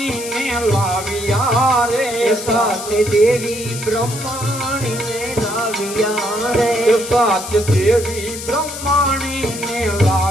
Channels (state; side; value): noise; left; hiss, 9 dB below the sound